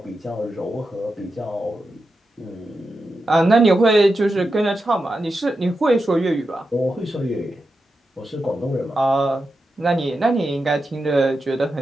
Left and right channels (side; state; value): both; normal; correlation 0.89